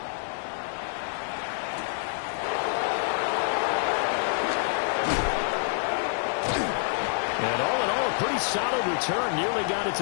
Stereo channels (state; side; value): silent; right; 59 dB below the other